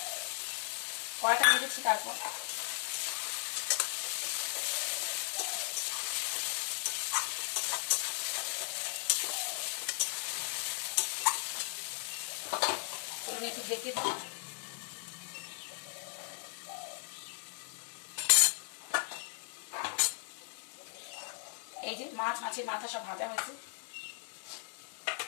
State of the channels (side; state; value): right; silent; 53 dB below the other